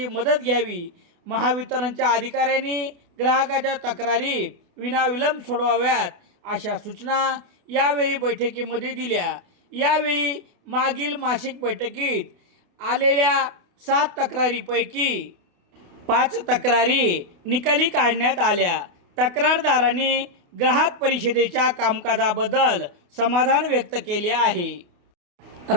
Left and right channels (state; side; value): late; left; 28 ms